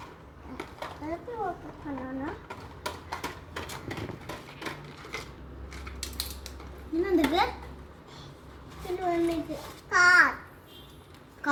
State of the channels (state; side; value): identical; both; correlation 1.00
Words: எப்படி ஓப்பன் பண்ணணும்? என்ன வந்திருக்கு? இது வந்துருக்கு